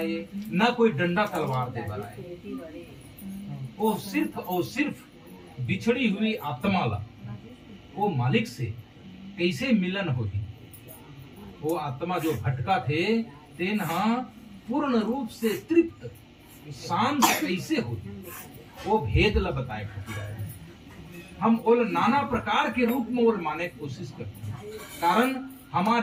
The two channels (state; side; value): identical; both; correlation 1.00